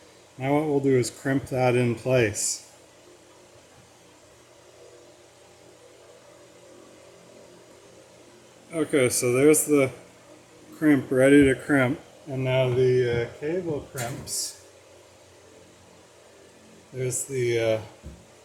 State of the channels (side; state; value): both; identical; correlation 1.00